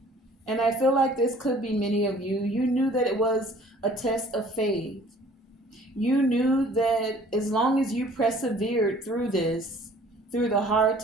and I feel like this could be many of you, you knew that it was a test of faith. You knew that as long as you persevered through this, through the hard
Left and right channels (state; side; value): normal; both; correlation 0.53